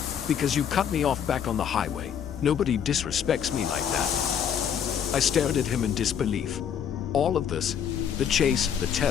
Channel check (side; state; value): right; quieter; 8.3 dB